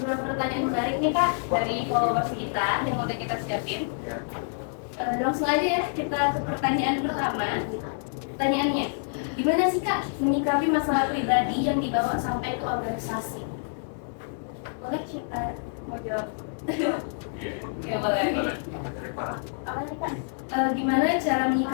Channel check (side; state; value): right; silent; digital silence